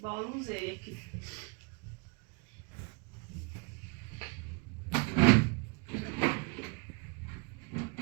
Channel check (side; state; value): left; quieter; 33.0 dB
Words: با روزه یکی